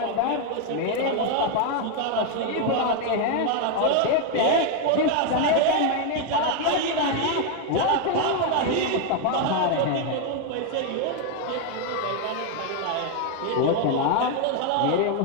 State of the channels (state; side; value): different; both; correlation 0.01